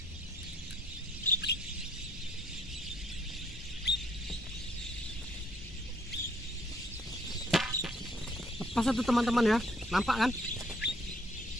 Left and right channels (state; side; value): normal; both; correlation 0.65